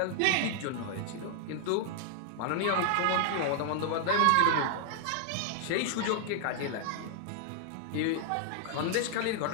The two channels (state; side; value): different; both; correlation -0.01